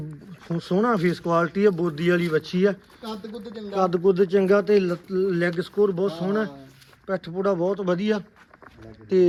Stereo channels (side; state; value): both; identical; correlation 1.00